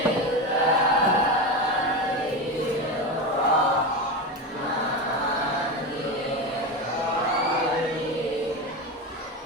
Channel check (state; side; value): normal; both; correlation 0.19